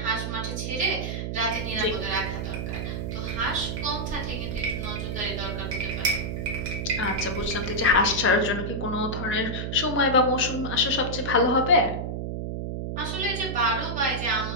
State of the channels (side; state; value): right; noise; hum, 3 dB below the sound